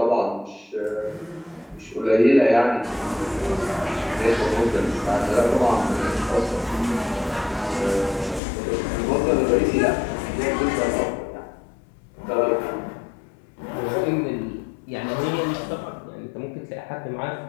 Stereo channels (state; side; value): drops out; right; at 8.4 s